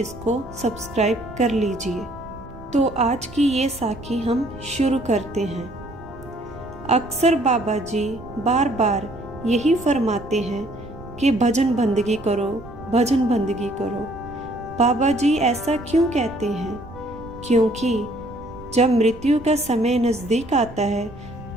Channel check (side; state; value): right; noise; rumble, 17 dB below the sound